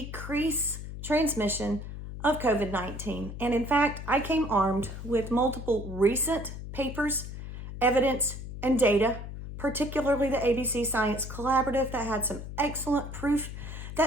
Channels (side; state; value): left; noise; hum, 9 dB below the sound